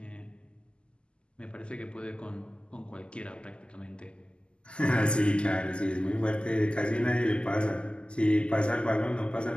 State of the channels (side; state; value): right; late; 0.051 ms